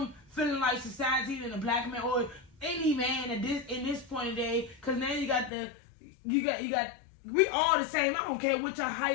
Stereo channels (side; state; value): right; drops out; at 5.5 s